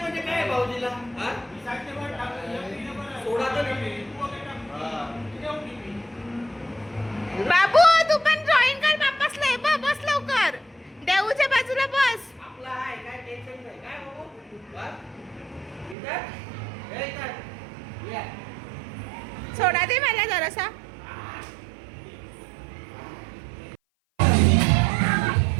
म्हणजे काय भाऊजीला सोडा तर बाबू तू पण जॉईन कर. बाप्पास लय बस लवकर. देऊच्या बाजूला बस. आपला आहे काय टेन्शन नाही काय बाबू. इधर सोडा दे मला जरासा.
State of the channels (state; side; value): drops out; left; at 16.0 s